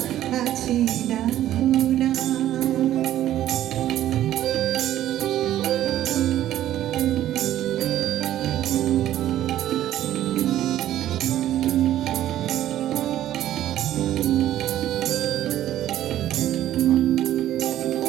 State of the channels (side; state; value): left; quieter; 12.6 dB